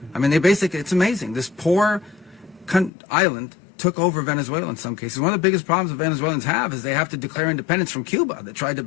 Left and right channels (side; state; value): right; drops out; at 2.9 s